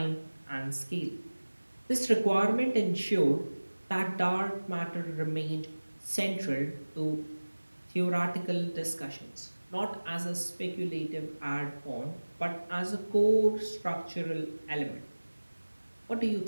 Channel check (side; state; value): both; inverted; correlation -1.00